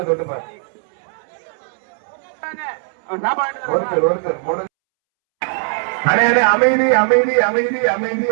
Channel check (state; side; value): silent; left; 67 dB below the other